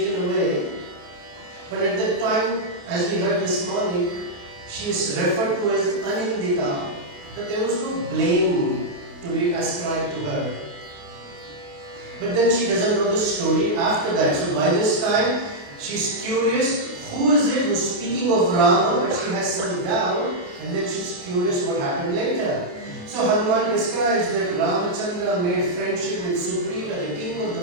away. But at that time, as we heard this morning, she is referred to as Anindita, that there was no blame to be ascribed to her. But then she doesn't know the story after that. So by this time, she's curious, who is it who's speaking of Rama, but she has some doubt, and then she's curious what happened later. So Hanuman describes that Ramachandra made friendship with Sugriva, the king of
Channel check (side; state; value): left; late; 28 ms